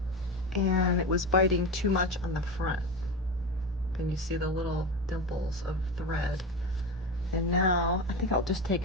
and it was biting too much on the front. And you see the little dimples of thread. And now I think I'll just take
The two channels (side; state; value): both; normal; correlation 0.22